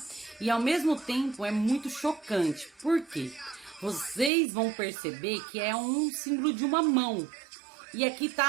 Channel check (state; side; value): drops out; left; at 4.3 s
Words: e ao mesmo tempo é muito chocante. Por quê? Vocês vão perceber que é um símbolo de uma mão e aqui